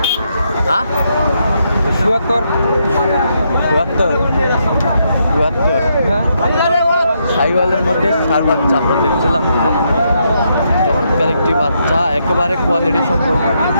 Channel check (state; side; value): inverted; both; correlation -0.78